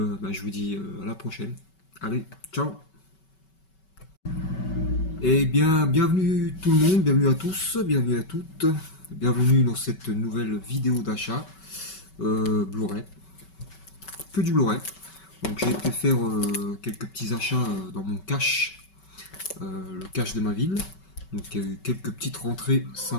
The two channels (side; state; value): right; late; 5.3 ms